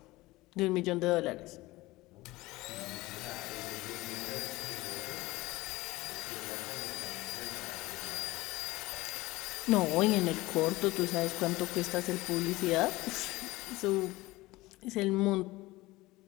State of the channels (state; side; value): quieter; right; 19.6 dB